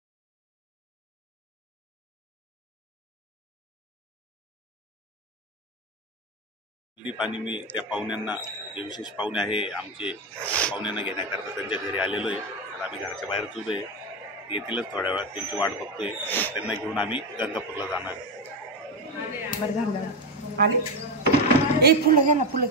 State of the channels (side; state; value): both; normal; correlation 0.12